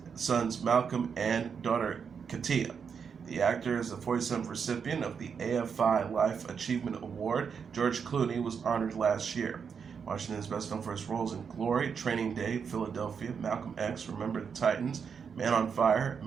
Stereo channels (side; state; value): left; quieter; 6.5 dB